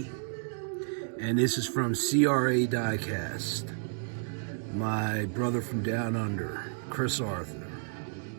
and this is from CRA Diecast. My brother from down under, Chris Arthur.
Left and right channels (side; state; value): left; silent; 57 dB below the other